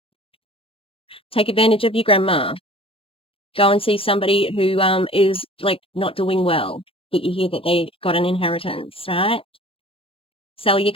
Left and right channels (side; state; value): right; late; 0.27 ms